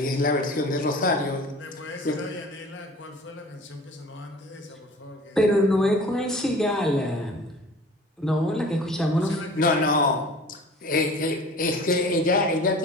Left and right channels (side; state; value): both; normal; correlation 0.43